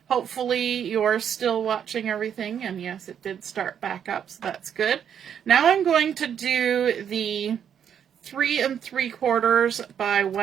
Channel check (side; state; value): left; quieter; 8.5 dB